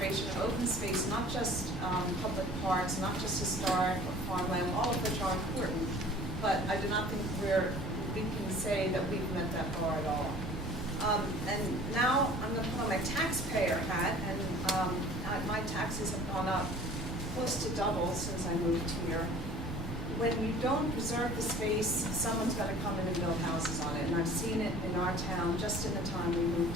of open space, not just public parks, not just historic or farmland, all of which are important, but I do not think we can say that we've met that bar at all. And now I'm going to put on my taxpayer hat, and my taxes have gone up close to double since I moved here. When you don't preserve the space, someone's going to come in and build houses on it, and I've seen it in our town just in the time we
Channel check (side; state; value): both; normal; correlation 0.48